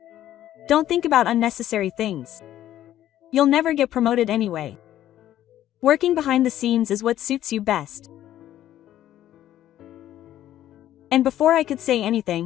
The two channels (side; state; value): right; quieter; 12.5 dB